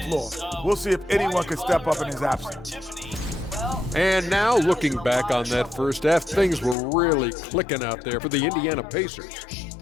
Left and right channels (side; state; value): right; drops out; at 6.8 s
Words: floor. We'll see if anyone can step up in his absence. And now, looking back on that first half, things were really clicking out there for the Indiana Pacers.